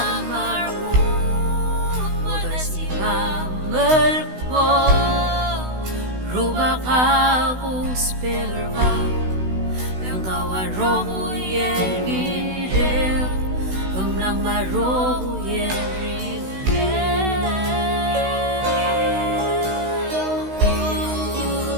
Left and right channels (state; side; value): late; left; 16 ms